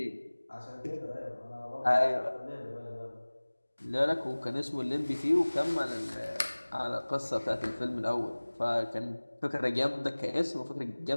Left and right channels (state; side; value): inverted; both; correlation -1.00